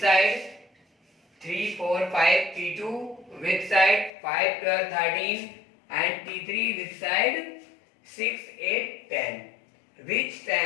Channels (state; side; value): drops out; right; at 4.1 s